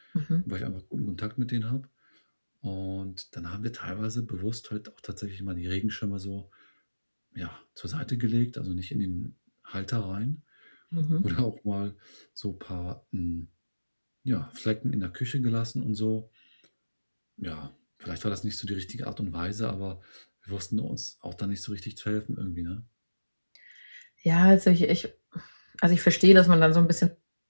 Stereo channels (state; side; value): inverted; both; correlation -1.00